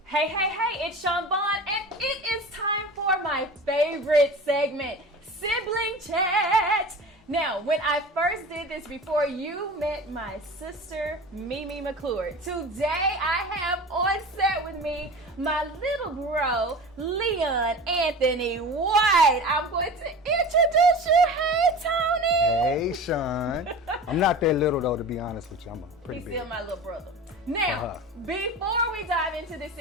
Hey, it's Chaun, Vaughn, and it is time for my favorite segment, Sibling Chat. Now, when I first did this before you met my sister, Mimi McClure, today I have on set with me my little bro, Leon Anthony White. I'm going to introduce you. Hey, Tony. Hey, Chaun. I'm not that little, though, to be honest with you. I'm pretty big. He's still my little brother. Now, before we dive into the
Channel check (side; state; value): both; normal; correlation 0.35